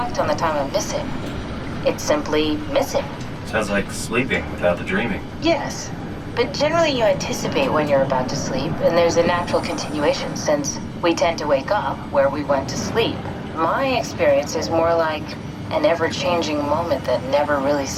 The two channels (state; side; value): identical; both; correlation 1.00